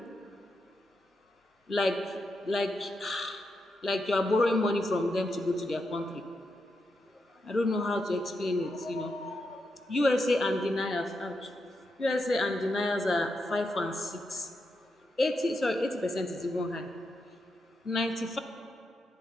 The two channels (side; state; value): both; normal; correlation 0.85